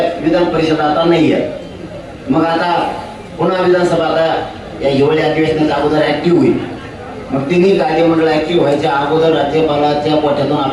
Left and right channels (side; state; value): both; identical; correlation 1.00